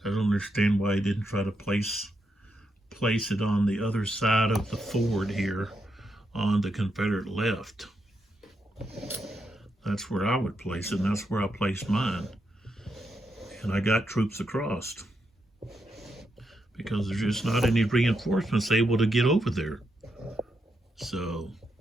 I don't understand why he didn't try to place it on the other side of the ford here on the Confederate left. That's where I would place it, and that's where I placed mine. And I got troops across because there's just not any reinforcements able to get over there. So,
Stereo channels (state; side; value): normal; both; correlation 0.82